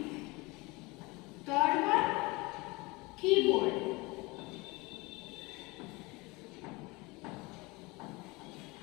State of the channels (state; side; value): quieter; right; 24.6 dB